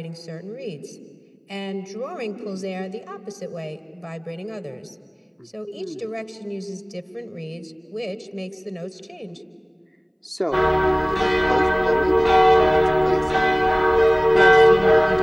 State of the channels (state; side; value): identical; both; correlation 1.00